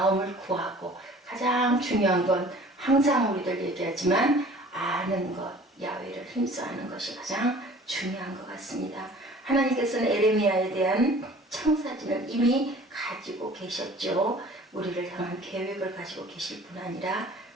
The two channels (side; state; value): both; normal; correlation 0.48